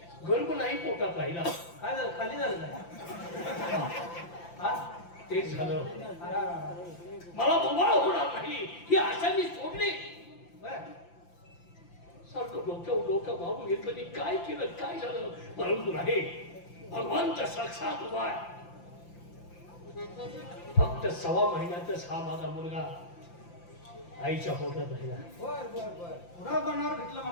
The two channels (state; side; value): late; right; 5.8 ms